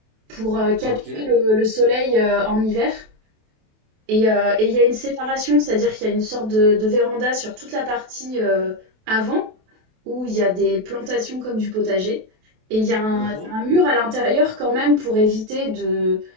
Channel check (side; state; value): left; late; 28 ms